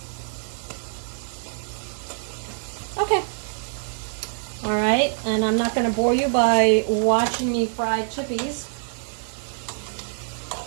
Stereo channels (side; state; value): left; silent; digital silence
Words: Okay. All right, and I'm not gonna bore you by watching me fry chippies.